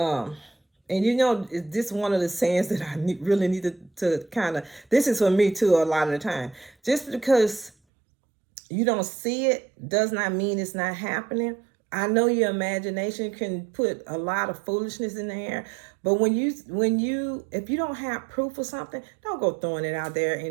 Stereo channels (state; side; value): drops out; left; at 7.7 s